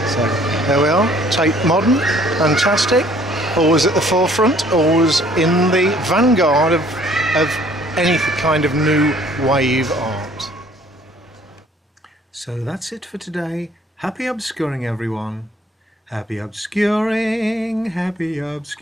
So there we are, Tate modern, fantastic, always at the forefront, always in the vanguard of any kind of new wave art. So that's it for today. Happy obscuring, everyone. Happy obscuring, happy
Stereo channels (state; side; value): normal; both; correlation 0.58